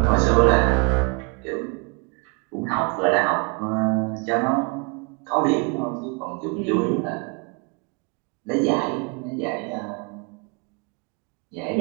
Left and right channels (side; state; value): left; quieter; 32.3 dB